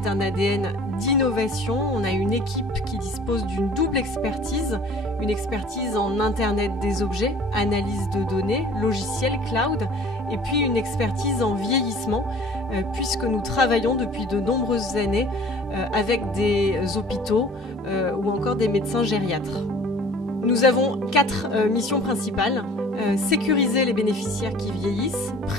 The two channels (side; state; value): both; normal; correlation 0.49